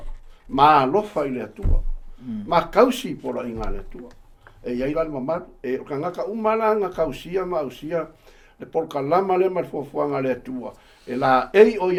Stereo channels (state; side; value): identical; both; correlation 1.00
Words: Ma alofa I le atua. Ma kausi pora I ngā le atua. E iai la le mamalu. E ka ngaka umalanga kausia ma ausia, le polka lama le mal fuafuanga le atua. E la ei o